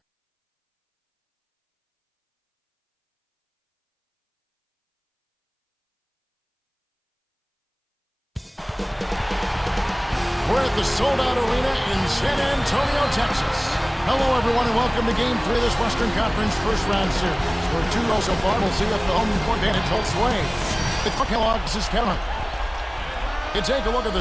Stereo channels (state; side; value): identical; both; correlation 1.00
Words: We're at the sold-out arena in San Antonio, Texas. Hello, everyone, and welcome to Game 3 of this Western Conference first-round series. We're 2-0 so far. We'll see if the home court advantage holds sway. The Kellogg's is Kevin. You take a look at